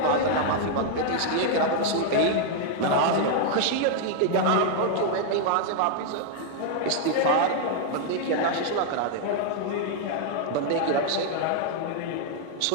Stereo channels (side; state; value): both; different; correlation 0.00